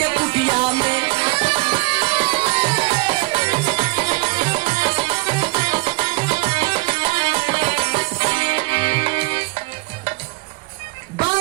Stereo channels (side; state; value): left; quieter; 25.5 dB